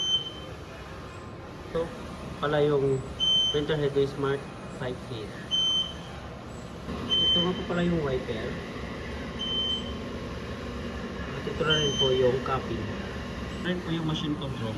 Ito pala yung printer head ng Smart 5 Fit. Ito nga po pala yung wiper. At ito na rin po yung copy. Ito rin po yung machine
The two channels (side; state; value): both; identical; correlation 1.00